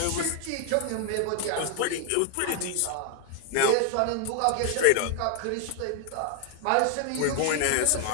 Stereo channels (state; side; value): different; both; correlation 0.00